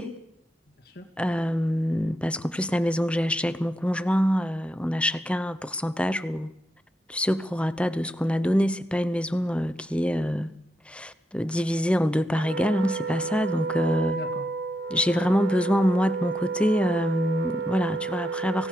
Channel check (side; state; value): both; normal; correlation 0.83